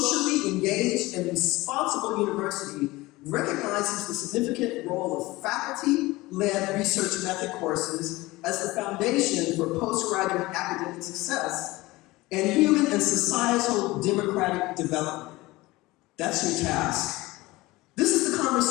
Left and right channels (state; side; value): quieter; right; 20.2 dB